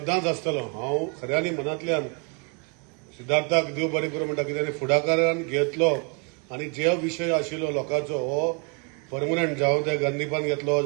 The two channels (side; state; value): left; quieter; 34.2 dB